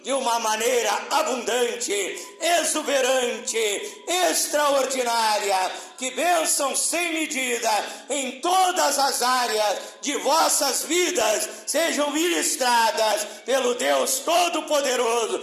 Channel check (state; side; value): identical; both; correlation 1.00